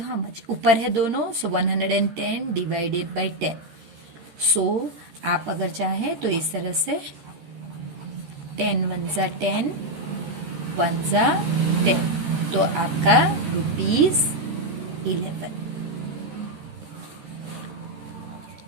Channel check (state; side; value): late; left; 13 ms